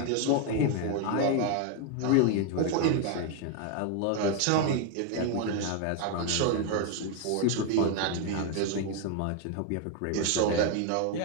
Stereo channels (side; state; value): both; different; correlation 0.01